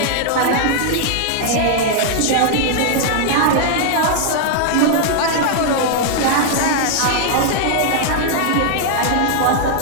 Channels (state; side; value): different; both; correlation 0.00